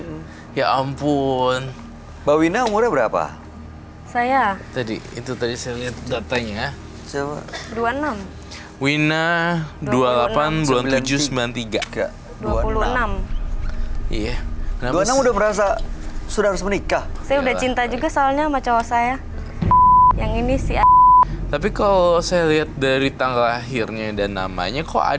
Ya ampun. Mbak Wina umurnya berapa? Saya Tadi saya lihat datanya. Coba. 26. Wina 28 bulan 7 93. Enggak. 26. Iya. Kenapa 26 udah merasa sudah harus menikah. Saya udah Iyalah. cinta juga soalnya sama cowok saya. Yang ini si Tapi kalau saya lihat dari tanggal lahirnya dan namanya, kok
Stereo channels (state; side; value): identical; both; correlation 1.00